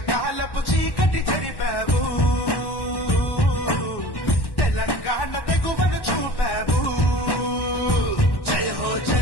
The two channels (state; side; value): late; right; 1.1 ms